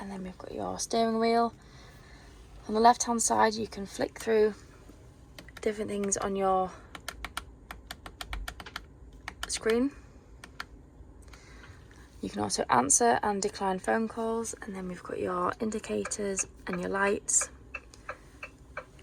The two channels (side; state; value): both; identical; correlation 1.00